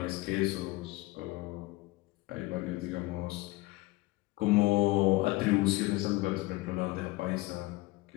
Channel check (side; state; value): right; quieter; 20.6 dB